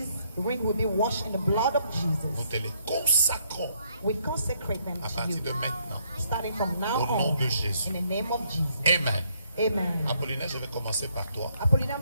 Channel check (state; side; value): inverted; both; correlation -0.70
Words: rings will be washed in the blood of Nous Jesus. te les consacrons We consecrate them à to partir you, de maintenant. starting from now Au nom on, de Jésus. in the name of Jesus. Amen. Amen. Apollinaire, je vais commencer par toi. Apollina,